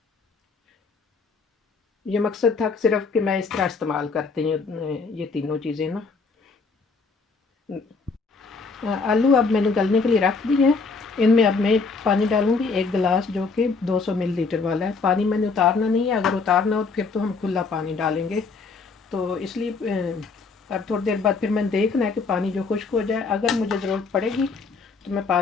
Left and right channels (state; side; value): quieter; right; 4.4 dB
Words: ये मकसद था सिर्फ कि मैं इस तरह इस्तेमाल करती हूँ ये तीनों चीज़ें ना। आलू अब मैंने गलने के लिए रख दिए हैं। इनमें अब मैं पानी डालूँगी 1 गिलास, जो कि 200 मिलीलीटर वाला है। पानी मैंने उतारना नहीं है, अगर उतारना हो तो फिर तो हम खुला पानी डालेंगे। तो इसलिए अब थोड़ी देर बाद फिर मैंने देखना है कि पानी जो खुश्क हो जाए। अगर मुझे ज़रूरत पड़ेगी तो मैं